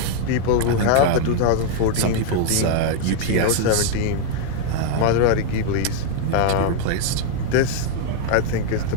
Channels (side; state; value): both; different; correlation 0.00